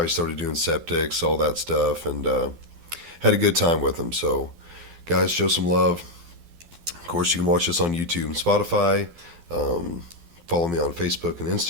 he started doing septics, all that stuff, and had a good time with him. So guys, show some love. Of course, you can watch this on YouTube and Spotify. Follow me on Facebook and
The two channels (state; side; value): late; left; 12 ms